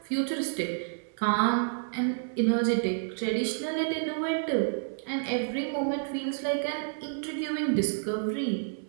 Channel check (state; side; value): silent; left; 58 dB below the other